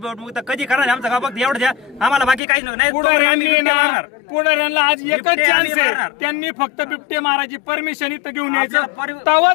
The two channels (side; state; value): right; drops out; at 2.4 s